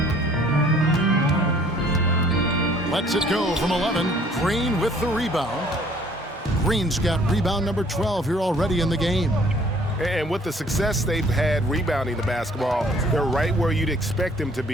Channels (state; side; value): normal; both; correlation 0.57